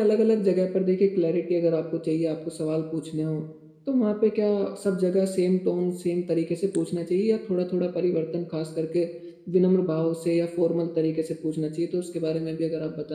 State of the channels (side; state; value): both; identical; correlation 1.00